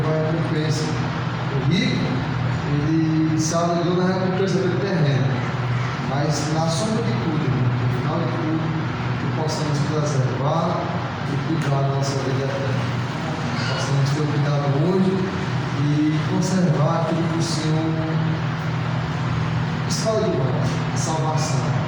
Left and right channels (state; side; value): identical; both; correlation 1.00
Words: vai a recompensa. O rico, ele se alegrou na recompensa do terreno, mas na sombra de tudo, no final de tudo, que possamos preservar e cuidar da nossa vida eterna. Possamos ter o cuidado hoje e conservar aquilo que o Senhor escolhe de nós, a salvação,